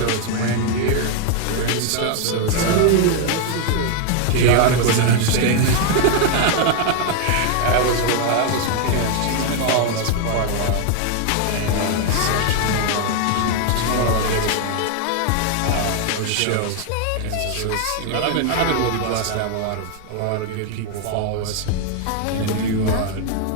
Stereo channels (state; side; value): different; both; correlation 0.00